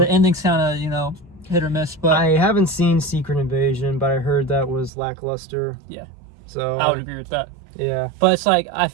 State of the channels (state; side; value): drops out; left; at 4.9 s